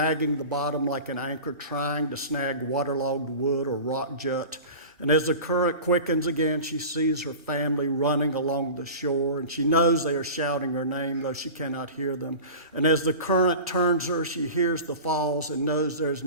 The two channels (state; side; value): inverted; both; correlation -0.35